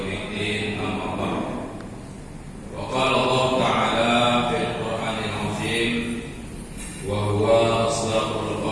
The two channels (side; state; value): both; identical; correlation 1.00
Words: الدين أما بعد وقال الله تعالى في القرآن العظيم وهو أصدق